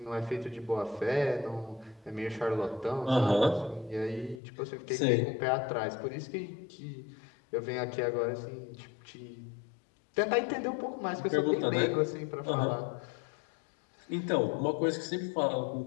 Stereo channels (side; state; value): right; drops out; at 4.4 s